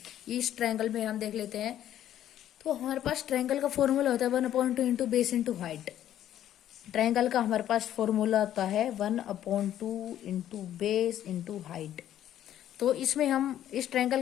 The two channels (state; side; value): quieter; right; 11.5 dB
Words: इस ट्रायंगल में हम देख लेते हैं, तो हमारे पास ट्रायंगल का फॉर्मूला होता है 1/2 into base into height. Triangle का हमारे पास फॉर्मूला होता है 1/2 इंटू बेस इंटू हाइट. तो इसमें हम इस ट्रायंगल